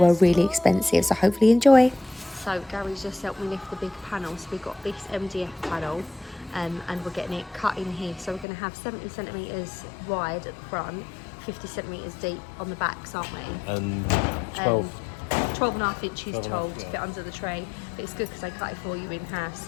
really expensive, so hopefully enjoy. So Gary's just helped me lift the big panel, so we've got this MDF panel and we're getting it cut in here. So we're going to have 70 centimetres wide at the front, 50 centimetres deep on the backs, aren't we? And 12 and a half inches tall to fit under the tray. But it's good because they cut it for you in half,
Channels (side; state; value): right; drops out; at 8.5 s